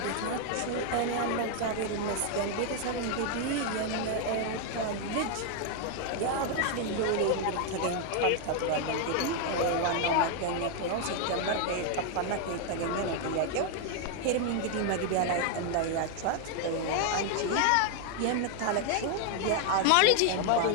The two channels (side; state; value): both; different; correlation 0.00